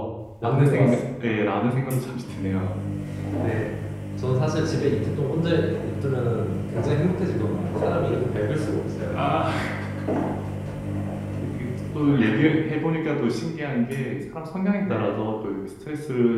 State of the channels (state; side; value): identical; both; correlation 1.00